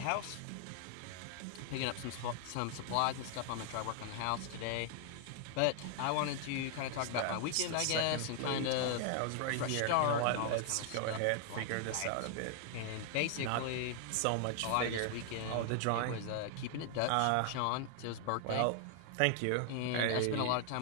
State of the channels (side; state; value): both; different; correlation 0.00